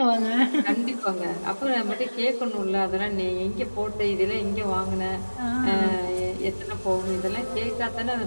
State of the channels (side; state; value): both; inverted; correlation -1.00